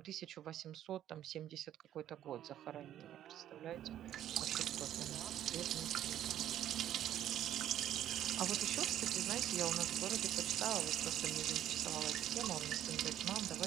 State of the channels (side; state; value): left; quieter; 11.5 dB